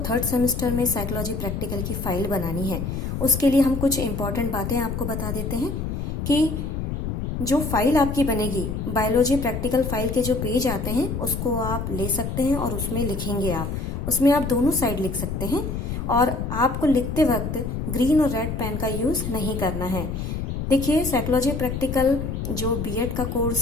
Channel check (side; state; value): left; noise; rumble, 4 dB below the sound